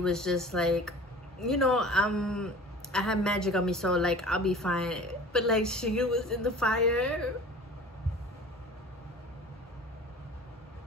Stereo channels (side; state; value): both; normal; correlation 0.42